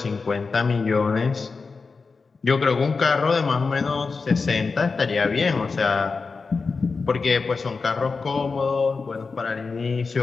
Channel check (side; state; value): right; quieter; 4.5 dB